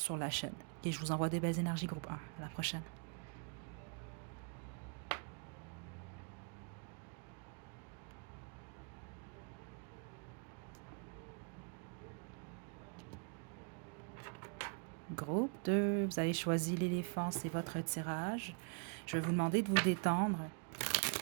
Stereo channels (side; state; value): left; quieter; 39.8 dB